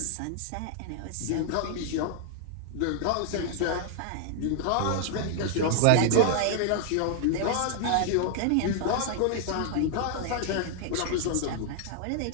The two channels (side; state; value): both; different; correlation -0.01